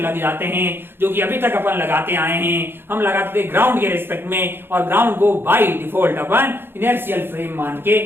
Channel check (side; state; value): left; late; 0.10 ms